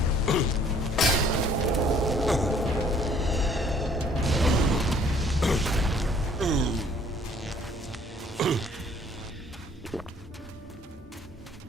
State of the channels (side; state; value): both; normal; correlation 0.59